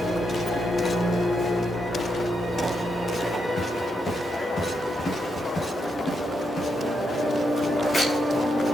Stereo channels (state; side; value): normal; both; correlation 0.82